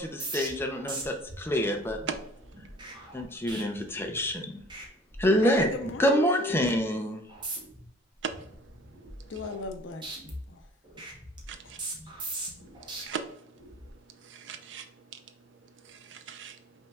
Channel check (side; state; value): both; normal; correlation 0.51